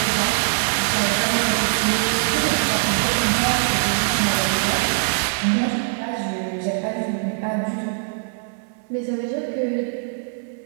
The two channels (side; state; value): left; silent; digital silence